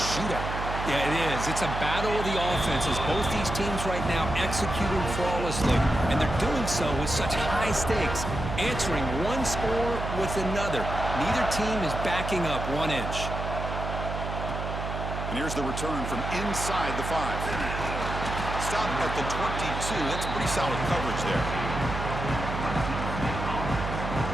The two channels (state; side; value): noise; right; hum, 5 dB below the sound